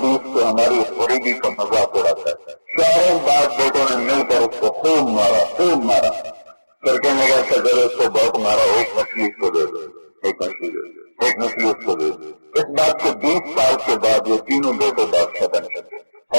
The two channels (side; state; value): both; inverted; correlation -1.00